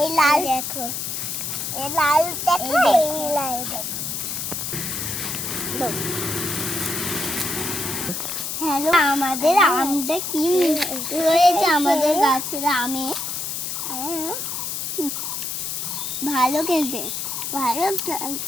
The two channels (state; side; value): noise; left; hiss, 4 dB below the sound